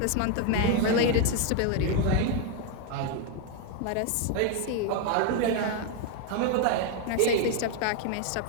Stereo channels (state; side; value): different; both; correlation 0.00